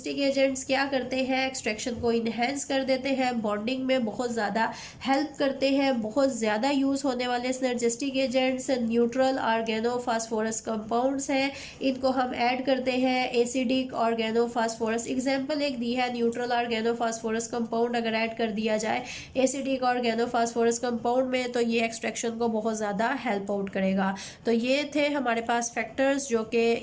एजेंट्स क्या करते हैं, एक्सट्रैक्शन को इन्हेंस कर देते हैं, बॉन्डिंग में बहुत ज़्यादा हेल्प करते हैं। बहुत ज़्यादा यूज़ होने वाले synergistic agents neutral organophosphorus compounds हैं, इनको हम ऐड करते हैं एसिडिक ऑर्गेनोफॉस्फोरस। एग्जांपल एक दी है, न्यूट्रल ऑर्गेनोफॉस्फोरस कंपाउंड अगर ऐड कर दिया जाए एसिडिक ऑर्गेनोफॉस्फोरस कंपाउंड में तो ये एक्सट्रैक्शन को बहुत ज़्यादा हेल्प आउट करेगा। तो ये थे हमारे पास फैक्टर्स जो कि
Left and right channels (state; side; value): identical; both; correlation 1.00